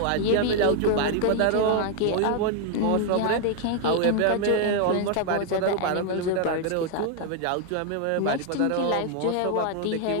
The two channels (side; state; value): both; different; correlation 0.00